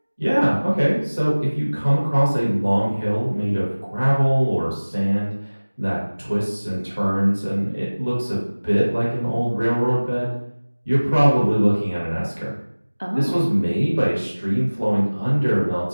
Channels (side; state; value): both; inverted; correlation -1.00